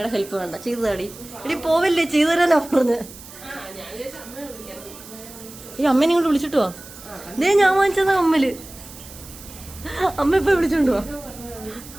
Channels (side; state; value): right; noise; hiss, 17 dB below the sound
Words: ഹെൽപ്പ് വേണ്ട, ചെയ്തു താടി. എടി പോവല്ലേ, ചെയ്തു തരാനാ പറഞ്ഞ്. ഈ അമ്മേനെ ഇങ്ങോട്ട് വിളിച്ചിട്ട് വാ. ദേ ഞാൻ വാങ്ങിച്ചതാ കമ്മല്. അമ്മ ഇപ്പൊ വിളിച്ചോണ്ട് വാ.